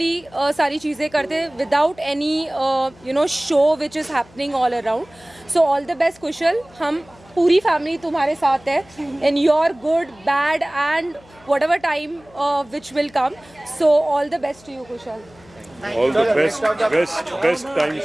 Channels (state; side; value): noise; left; hum, 26 dB below the sound